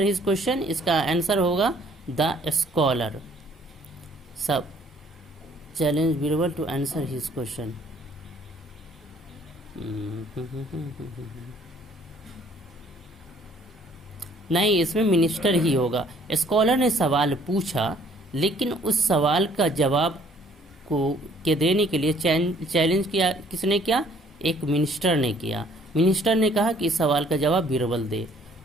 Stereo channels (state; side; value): normal; both; correlation 0.59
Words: his question, इसका आंसर होगा द स्कॉलर। सब challenge Birbal to answer his question. नहीं, इसमें मिनिस्टर ही होगा। स्कॉलर ने सवाल पूछा, लेकिन उस सवाल का जवाब के देने के लिए चैलेंज किया। किसने किया? एक मिनिस्टर ने किया। मिनिस्टर ने कहा कि इस सवाल का जवाब बीरबल दे।